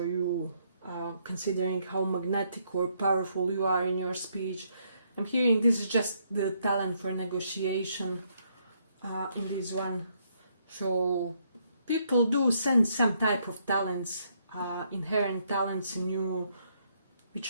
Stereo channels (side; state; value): both; inverted; correlation -0.73